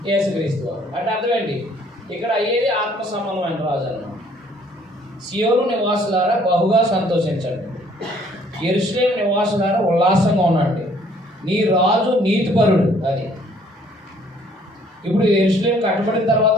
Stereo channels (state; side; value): normal; both; correlation 0.60